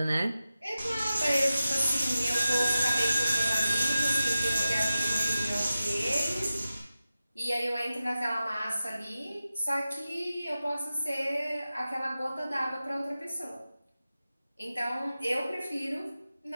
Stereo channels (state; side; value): inverted; both; correlation -0.94